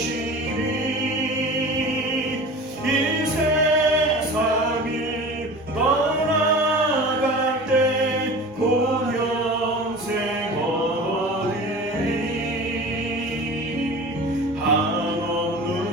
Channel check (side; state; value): both; normal; correlation 0.37